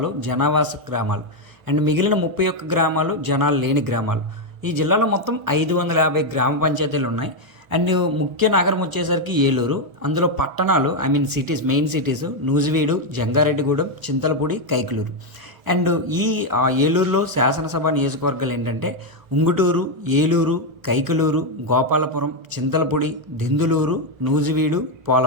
జనావాస గ్రామాలు అండ్ మిగిలిన 31 గ్రామాలు జనాలు లేని గ్రామాలు. ఈ జిల్లాలో మొత్తం 550 గ్రామ పంచాయతీలు ఉన్నాయి. అండ్ ముఖ్య నగరం వచ్చేసరికి ఏలూరు. అందులో పట్టణాలు cities, main cities Nuzvid, Jangareddygudem, Chintalapudi, Kaikaluru. And ఈ ఏలూరులో శాసనసభ నియోజకవర్గాలు ఏంటంటే ఉంగుటూరు, ఏలూరు, కైకలూరు, గోపాలపురం, చింతలపూడి, దెందులూరు, నూజివీడు,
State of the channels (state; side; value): late; left; 1.1 ms